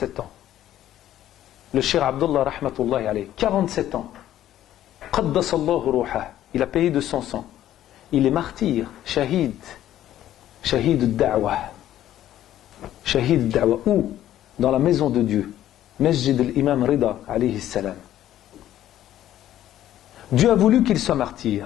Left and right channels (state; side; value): quieter; right; 12.5 dB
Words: ans. Le Cheikh Abdullah rahmatullahi alayhi, 47 ans. Qaddasallahu ruhah. Il a payé de son sang. Il est martyr, shahid al-da'wah. Shahid al-da'wah. Où? Dans la maison de Dieu. Masjid al-Imam Rida alayhi salam. Dieu a voulu qu'il soit